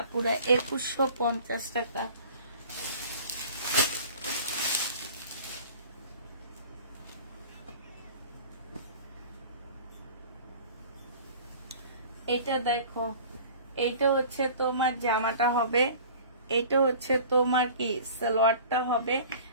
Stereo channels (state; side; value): inverted; both; correlation -0.44